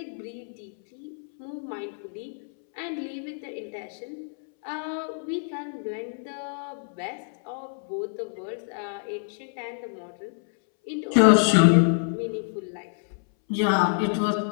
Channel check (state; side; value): silent; right; 60 dB below the other